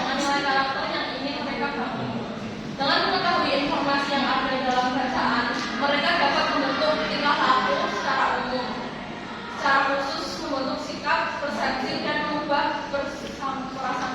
nilai karakter yang ingin mereka bangun. Dengan mengetahui informasi yang ada di dalam bacaan, mereka dapat membentuk tingkah laku secara umum, secara khusus membentuk sikap, persepsi, dan mengubah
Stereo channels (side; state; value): both; identical; correlation 1.00